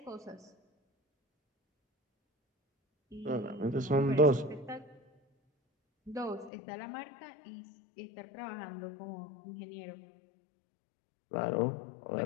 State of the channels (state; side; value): drops out; right; at 6.5 s